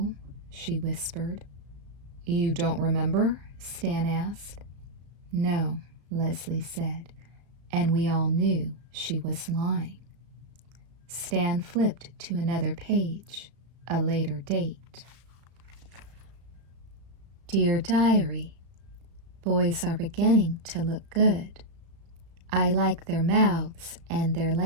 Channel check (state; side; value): late; left; 34 ms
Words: she whispered. You don't remember? Stan asked. No, Leslie said, and we all knew she was lying. Stan flipped to another page, a later date. Dear Diary, boys are beginning to look good. I like their mouths and their